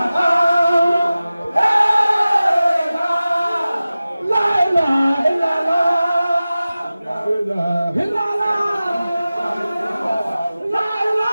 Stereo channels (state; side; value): inverted; both; correlation -0.96